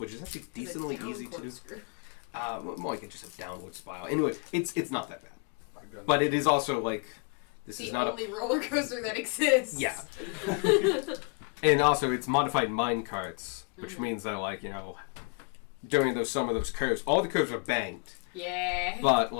is actually decently easy to. More like just a downward spiral. Anyway, it's not that bad, but it is also like this The is not only roller coaster that exists. Yeah. And also, it's modified mine carts, which means that, like, during some of those curves, all the curves are banked, Yeah. but,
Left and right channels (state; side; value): quieter; right; 34.4 dB